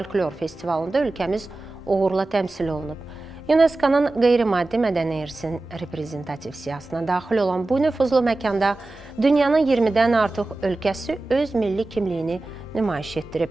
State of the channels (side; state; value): left; quieter; 3.0 dB